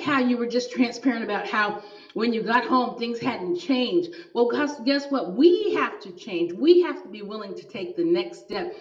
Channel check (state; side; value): identical; both; correlation 1.00